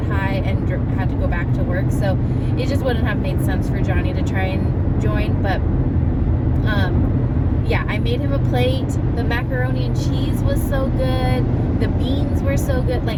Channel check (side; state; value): both; identical; correlation 1.00